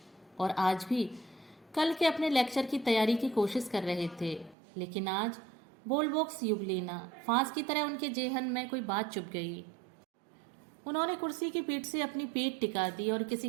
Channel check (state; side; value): drops out; left; at 4.5 s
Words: और आज भी कल के अपने लेक्चर की तैयारी की कोशिश कर रहे थे। लेकिन आज बुलबुक्स युगलीना फांस की तरह उनके जेहन में कोई बात चुभ गई। उन्होंने कुर्सी की पीठ से अपनी पीठ टिका दी और